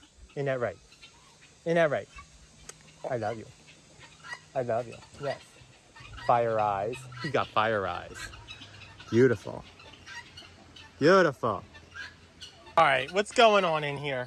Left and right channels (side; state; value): both; identical; correlation 1.00